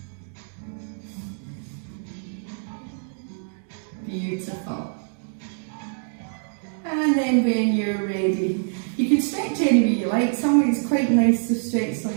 Beautiful. And then when you're ready, you can stretch any way you like. Some way it's quite nice to stretch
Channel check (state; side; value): silent; left; digital silence